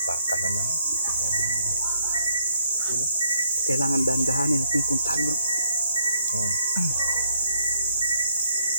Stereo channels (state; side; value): inverted; both; correlation -0.71